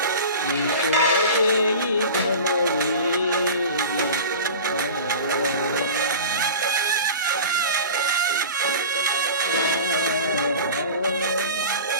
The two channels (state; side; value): inverted; both; correlation -0.36